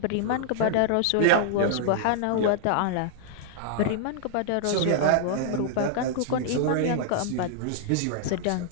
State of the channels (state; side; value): different; both; correlation -0.01